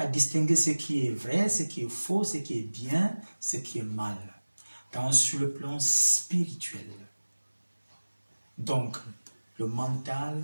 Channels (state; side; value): inverted; both; correlation -1.00